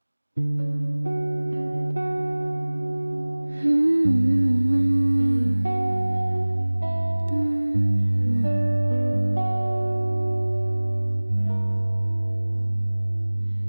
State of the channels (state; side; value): inverted; both; correlation -1.00